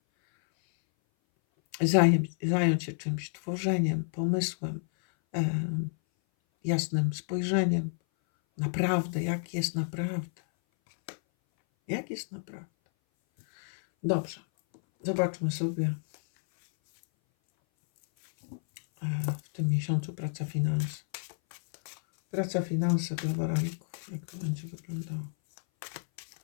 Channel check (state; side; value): silent; right; 58 dB below the other